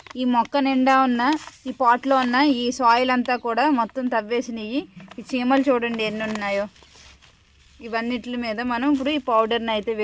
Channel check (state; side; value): identical; both; correlation 1.00